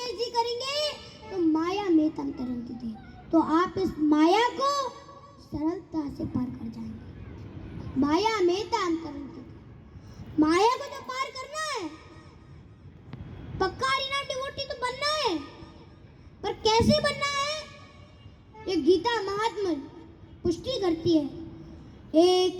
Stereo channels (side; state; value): both; identical; correlation 1.00